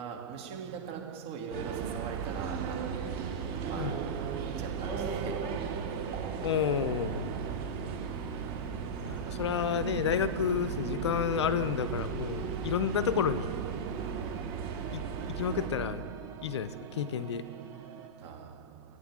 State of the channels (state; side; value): normal; both; correlation -0.11